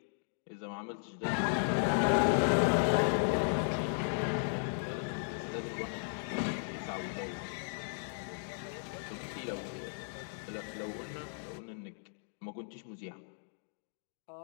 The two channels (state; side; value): silent; right; digital silence